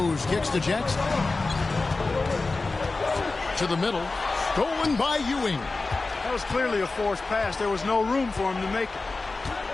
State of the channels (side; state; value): right; quieter; 3.6 dB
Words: kicks to Jackson. To the middle. Stolen by Ewing. That was clearly a forced pass. There was no room for him to make it.